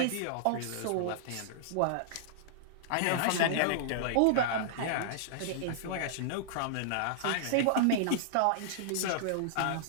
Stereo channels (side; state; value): both; different; correlation -0.02